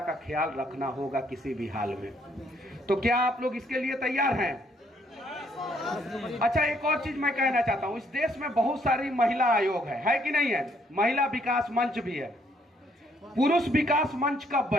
ख्याल रखना होगा किसी भी हाल में। तो क्या आप लोग इसके लिए तैयार हैं? अच्छा, एक और चीज मैं कहना चाहता हूं। इस देश में बहुत सारी महिला आयोग है कि नहीं है? महिला विकास मंच भी है। पुरुष विकास मंच कब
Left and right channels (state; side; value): normal; both; correlation 0.68